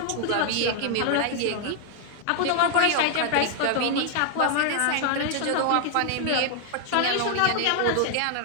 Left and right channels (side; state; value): both; different; correlation 0.00